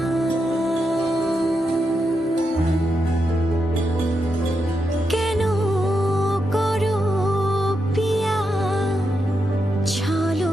কেন করো পিয়া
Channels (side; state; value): both; normal; correlation 0.85